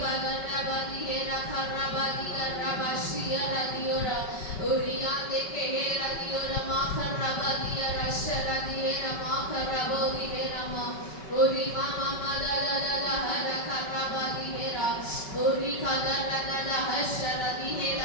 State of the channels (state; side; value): late; right; 5.3 ms